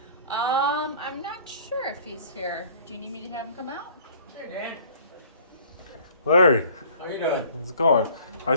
I'm not sure if he's here. Do you need me to have him come out? Hey, Dan. Larry, How you doing? how's it going? I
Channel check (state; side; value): inverted; both; correlation -0.52